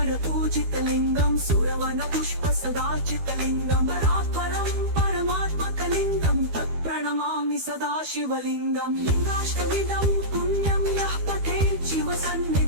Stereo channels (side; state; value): left; late; 12 ms